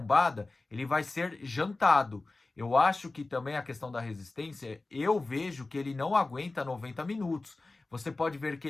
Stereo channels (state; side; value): quieter; right; 3.3 dB